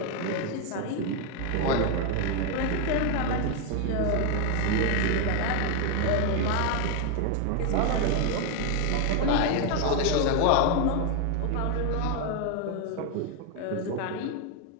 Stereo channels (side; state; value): both; different; correlation 0.01